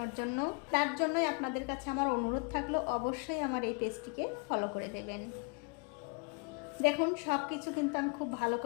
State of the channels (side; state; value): right; quieter; 34.1 dB